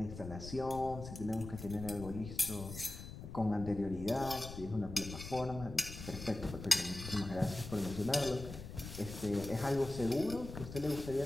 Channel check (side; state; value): left; noise; rumble, 10 dB below the sound